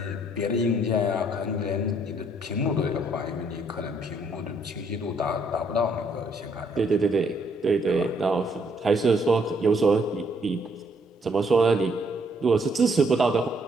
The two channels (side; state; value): both; normal; correlation 0.68